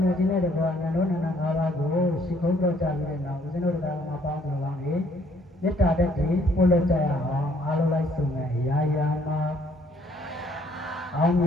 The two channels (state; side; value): normal; both; correlation 0.64